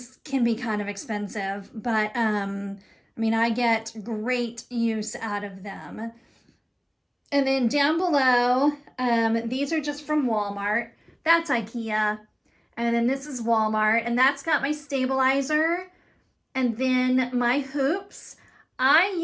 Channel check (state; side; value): identical; both; correlation 1.00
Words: can be kind of expensive, but I mean, I get great use out of them. And then down below, these are just from Walmart. That's IKEA. And then this is Walmart, and that's got my stabilizer. And then my hoops. I